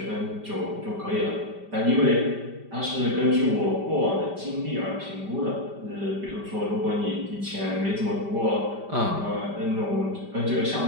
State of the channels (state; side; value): late; left; 5.1 ms